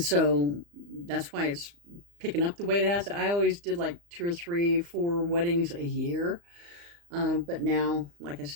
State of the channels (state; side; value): late; left; 35 ms